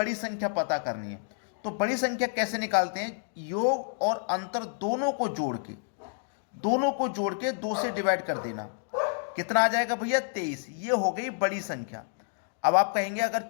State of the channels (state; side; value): silent; right; digital silence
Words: संख्या पता करनी है। तो बड़ी संख्या कैसे निकालते हैं? योग और अंतर दोनों को जोड़ के 2 से डिवाइड कर देना। कितना आ जाएगा भैया? 23। ये हो गई बड़ी संख्या। अब आप कहेंगे अगर